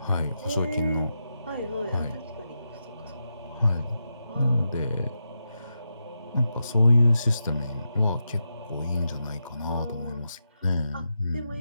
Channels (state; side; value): inverted; both; correlation -0.87